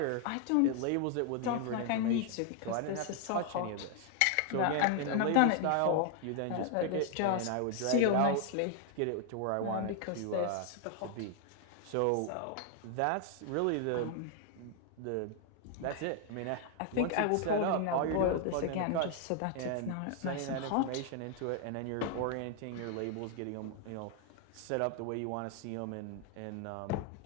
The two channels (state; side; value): different; both; correlation 0.00